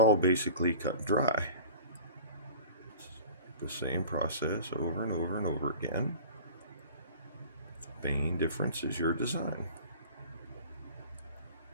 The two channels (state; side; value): inverted; both; correlation -0.41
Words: basically cut dry. It's the same process over and over and over again. The main difference is your design.